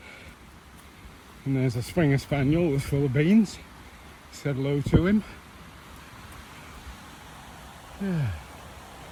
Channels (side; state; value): both; identical; correlation 1.00